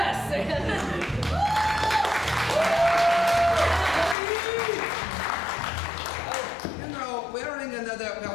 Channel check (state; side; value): drops out; right; at 4.2 s